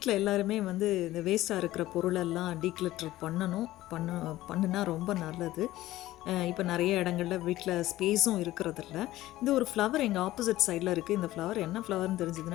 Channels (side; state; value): right; quieter; 15.9 dB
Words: எல்லாருமே வந்து இந்த வேஸ்ட்டாக இருக்கிற பொருளெல்லாம் டீக்ளட்டர் பண்ணுனா ரொம்ப நல்லது. இப்போ நிறைய இடங்களில் வீட்டில் ஸ்பேஸும் இருக்கிறதில்ல. இந்த ஒரு ஃப்ளவர் எங்கள் ஆப்போசிட் சைடில் இருக்குது. இந்த ஃப்ளவர் என்ன ஃப்ளவர்னு